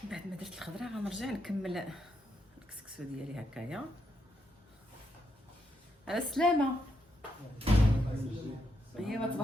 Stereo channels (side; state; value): both; normal; correlation 0.80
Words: بعد ما درت الخضره غنرجع نكمل الكسكسو ديالي هكايا. على السلامه. ايوا